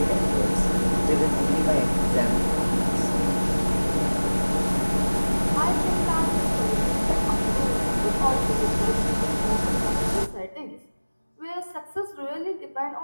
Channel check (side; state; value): both; inverted; correlation -1.00